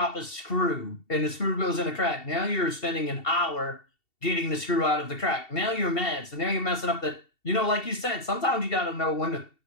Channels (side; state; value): right; late; 2.7 ms